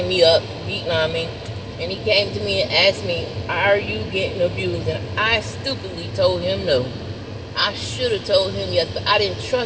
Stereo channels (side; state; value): both; identical; correlation 1.00